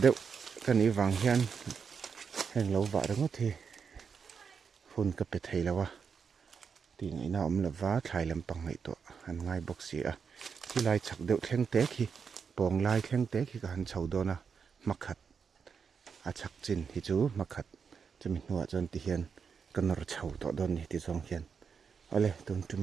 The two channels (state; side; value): quieter; left; 6.2 dB